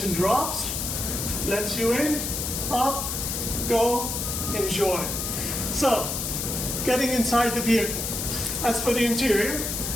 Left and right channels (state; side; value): noise; left; hiss, 3 dB below the sound